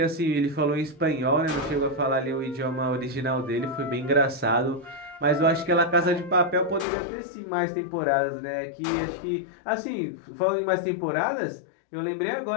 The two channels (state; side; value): drops out; right; at 6.9 s